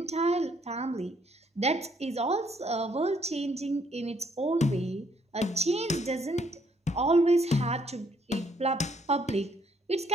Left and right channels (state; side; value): normal; both; correlation 0.69